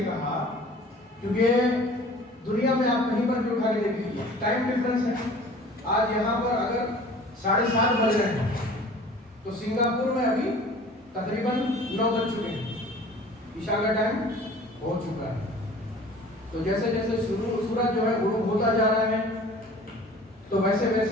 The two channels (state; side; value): normal; both; correlation 0.46